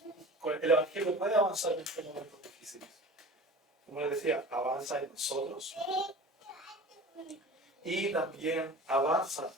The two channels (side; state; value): both; normal; correlation 0.38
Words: El Evangelio puede avanzar en estos momentos difíciles. Como les decía, avanza en nosotros y también avanza